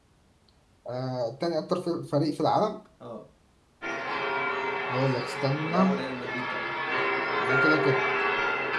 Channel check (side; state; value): both; identical; correlation 1.00